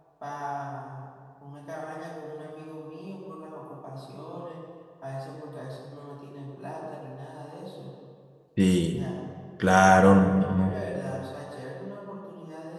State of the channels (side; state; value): both; identical; correlation 1.00